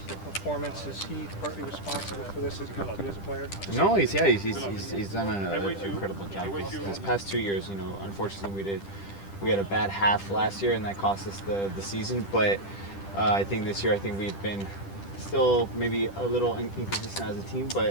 the performance? Is he partly responsible for this as a player? No, he's done an incredible job. These past 2 years, unfortunately we had a bad half last year, and that cost us the season. But I think this year, we've been still maybe a little inconsistent as a team,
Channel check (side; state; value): right; late; 10 ms